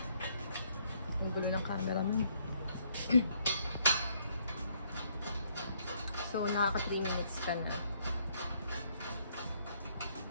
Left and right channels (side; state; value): both; inverted; correlation -0.69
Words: Ang gulo ng camera mo. So, nakaka 3 minutes ka na.